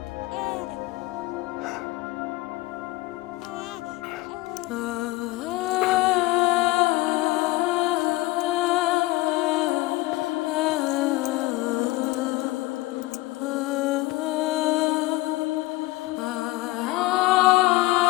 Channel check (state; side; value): quieter; right; 20.0 dB